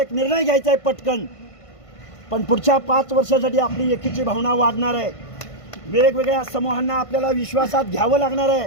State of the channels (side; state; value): right; late; 1.5 ms